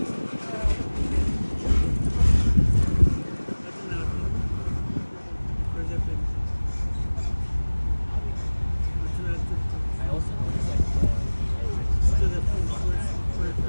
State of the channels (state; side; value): inverted; both; correlation -1.00